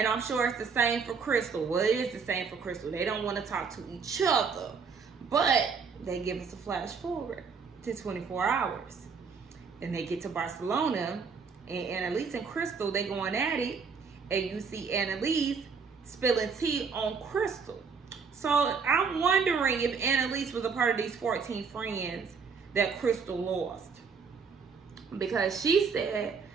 I'm sure it's the same for Crystal. Well, it is the same for Crystal. They don't want to talk to each other. But they give us a flash forward to 24 hours. And they get to Barcelona. And Annalise and Crystal, they going at it, and you see Annalise spilling tea on Crystal. So I'm wondering if Annalise was a part of these 14 friends that Crystal lost. Because she said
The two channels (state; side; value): quieter; left; 5.5 dB